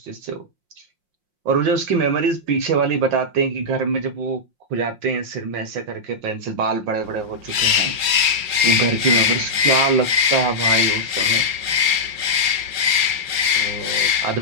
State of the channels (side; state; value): left; late; 5.6 ms